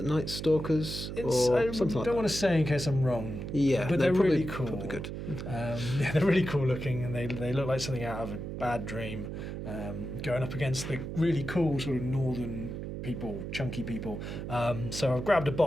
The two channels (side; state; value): right; noise; hum, 6 dB below the sound